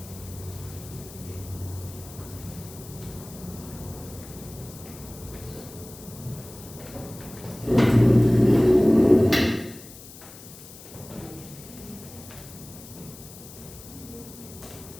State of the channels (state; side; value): noise; left; hiss, 17 dB below the sound